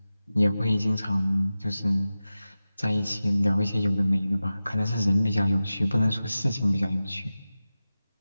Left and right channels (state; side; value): inverted; both; correlation -0.94